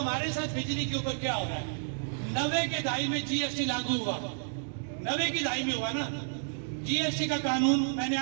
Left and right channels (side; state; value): left; silent; digital silence